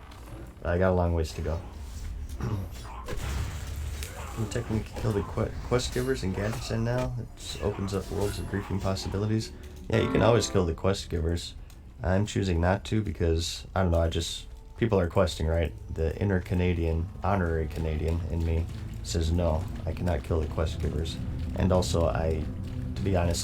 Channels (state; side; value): identical; both; correlation 1.00